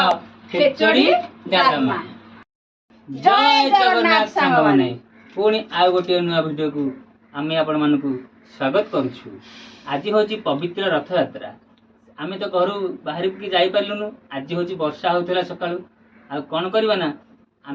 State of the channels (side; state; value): both; identical; correlation 1.00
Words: खेचड़ी डालमा। जय जगन्नाथ सांग माने पुणी आ गोटे नुआ वीडियो को आमे आपण मानकू स्वागत करूछु। आज होची पवित्र रथ यात्रा। आमे तो घर बाहर की जाई पारलुनु। आज होची वर्षा होतला सकाळू। आ कोन करबा ना